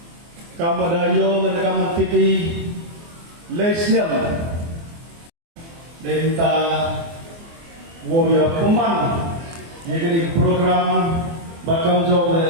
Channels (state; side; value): late; left; 24 ms